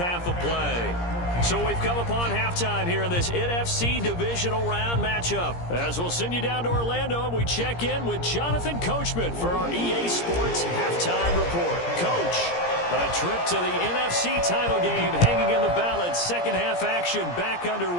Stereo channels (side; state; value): right; late; 17 ms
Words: of play. So we've come upon halftime here in this NFC divisional round matchup. As we'll send you down to Orlando, and we check in with Jonathan Coachman for our EA Sports halftime report. Coach, a trip to the NFC title game hanging in the balance. Second half action back